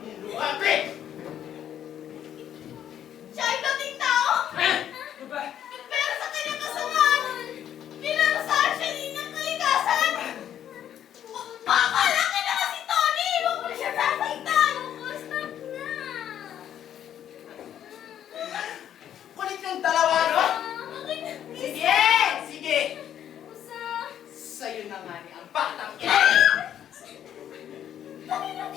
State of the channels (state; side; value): quieter; right; 10.3 dB